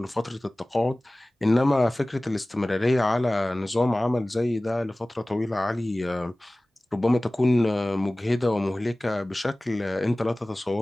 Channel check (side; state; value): both; normal; correlation 0.98